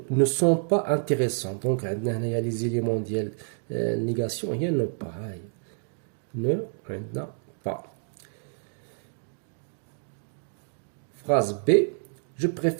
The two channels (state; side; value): silent; left; 59 dB below the other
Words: ne sont pas intéressants. Donc عندنا هنايا les éléments ديال négation هي ne pas. Ne عندنا pas. Phrase B. Je